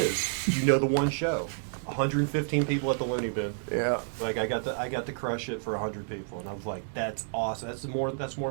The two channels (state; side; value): silent; left; digital silence